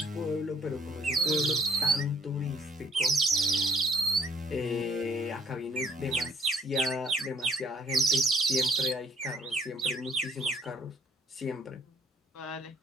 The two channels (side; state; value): both; normal; correlation 0.61